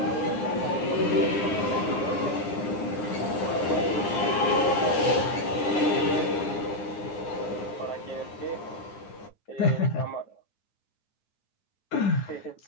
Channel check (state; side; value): late; right; 9.8 ms